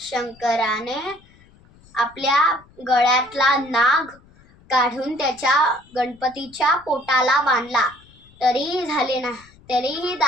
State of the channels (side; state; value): left; noise; rumble, 27 dB below the sound